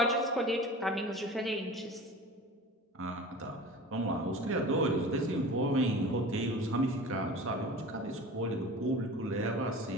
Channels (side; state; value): both; normal; correlation 0.37